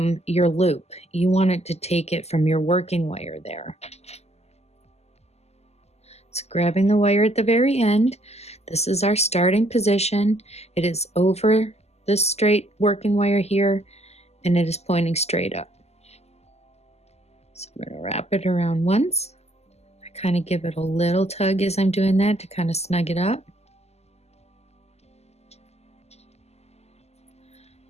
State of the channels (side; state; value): right; late; 0.30 ms